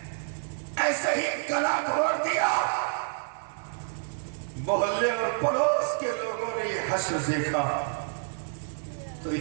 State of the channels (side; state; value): left; silent; 56 dB below the other